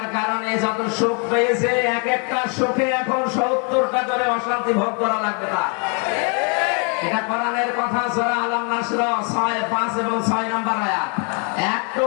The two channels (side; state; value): right; quieter; 37.4 dB